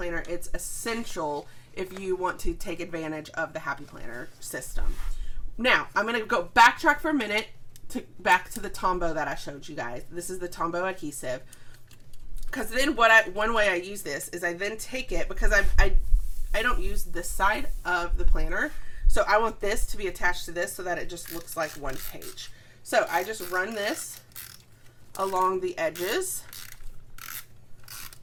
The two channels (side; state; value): both; identical; correlation 1.00